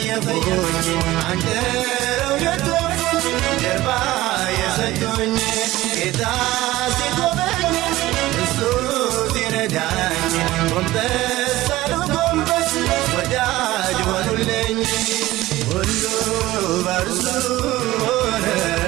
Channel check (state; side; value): quieter; left; 17.1 dB